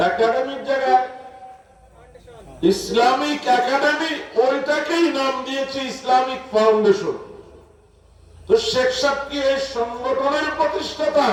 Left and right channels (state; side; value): identical; both; correlation 1.00